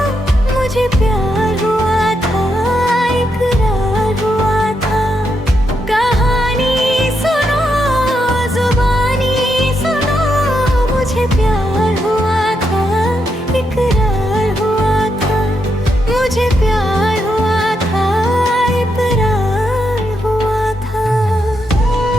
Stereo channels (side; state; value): both; normal; correlation 0.81